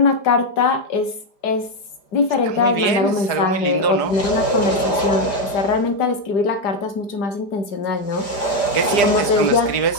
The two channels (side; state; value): right; late; 4.9 ms